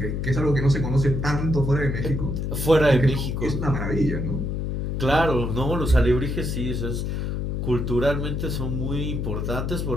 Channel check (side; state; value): left; noise; hum, 2 dB below the sound